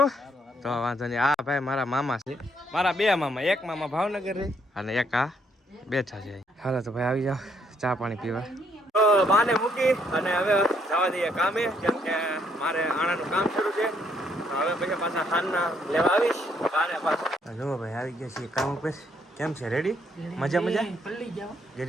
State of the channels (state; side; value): normal; both; correlation 0.70